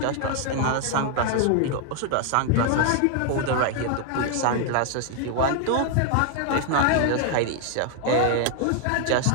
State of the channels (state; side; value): different; both; correlation 0.00